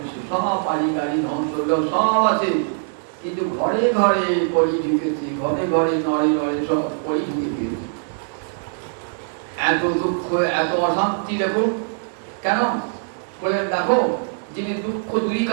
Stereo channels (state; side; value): silent; left; 64 dB below the other